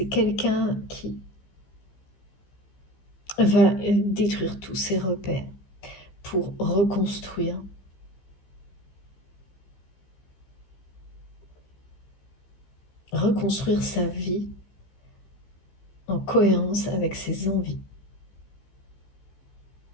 quelqu'un qui va détruire tous ses repères pour reconstruire. Reconstruire sa vie en cohérence avec ses envies.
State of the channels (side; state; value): right; late; 15 ms